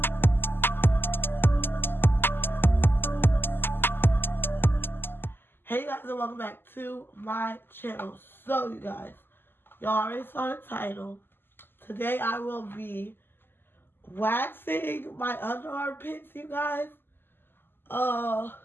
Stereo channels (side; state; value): right; late; 0.10 ms